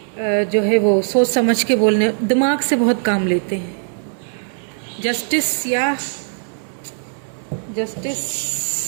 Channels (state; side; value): silent; left; 63 dB below the other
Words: जो है वो सोच समझ के बोलने, दिमाग से बहुत काम लेते हैं। जस्टिस या justice,